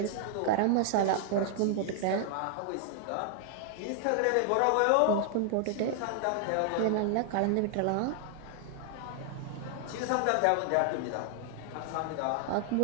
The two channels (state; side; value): different; both; correlation 0.00